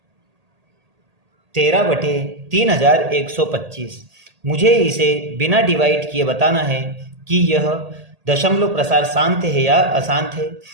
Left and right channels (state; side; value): late; left; 1.8 ms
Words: 13/3125। मुझे इसे बिना डिवाइड किए बताना है कि यह दशमलव प्रसार शांत है या अशांत है।